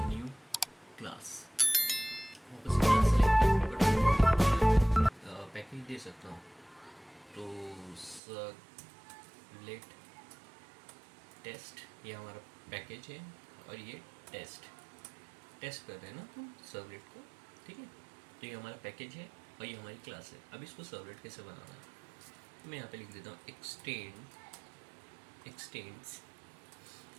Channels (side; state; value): left; drops out; at 8.2 s